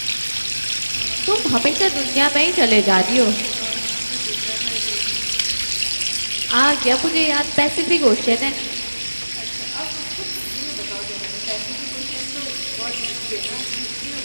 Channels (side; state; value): both; inverted; correlation -1.00